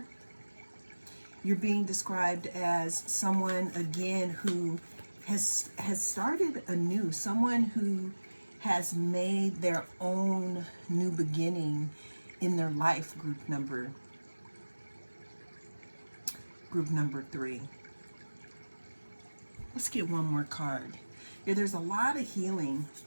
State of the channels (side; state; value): both; inverted; correlation -1.00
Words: You're being described as someone, again, who has started anew, someone who has made their own new beginning in their life, group number 3. Let's get one more card. Yeah, there's a lot of healing.